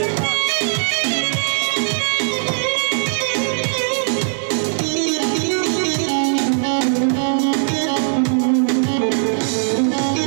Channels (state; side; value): silent; left; digital silence